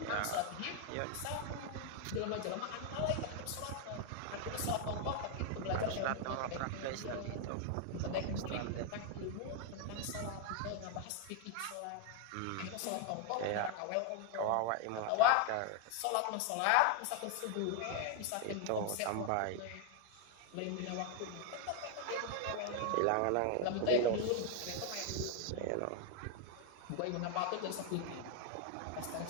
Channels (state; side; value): different; both; correlation 0.01